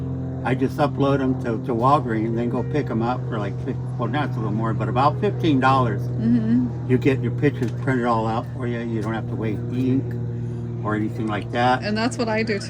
I just upload them to Walgreens and then go pick them up for like, well, now it's a little more, but about $15. You get your pictures printed all out for you. You don't have to waste ink or anything like that. And that's what I do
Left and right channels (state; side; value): identical; both; correlation 1.00